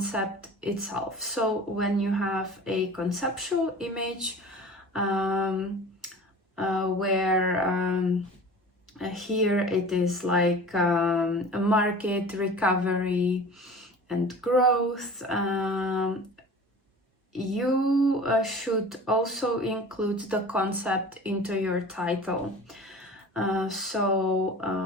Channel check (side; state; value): both; normal; correlation 0.40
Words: itself. So when you have a conceptual image where here it is like a market recovery and growth, you should also include the concept into your title.